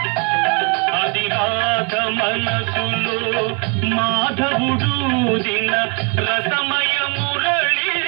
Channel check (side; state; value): left; quieter; 34.6 dB